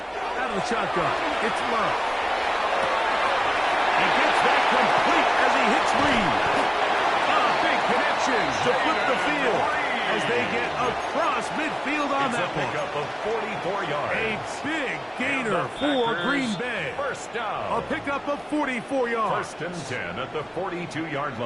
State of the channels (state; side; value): identical; both; correlation 1.00